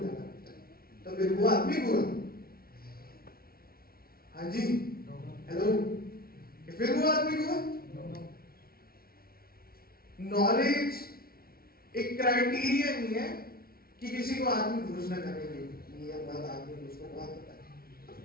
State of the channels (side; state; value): right; late; 0.44 ms